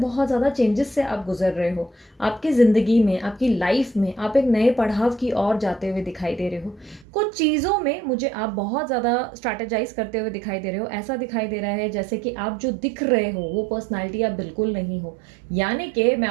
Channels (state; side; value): drops out; left; at 7.1 s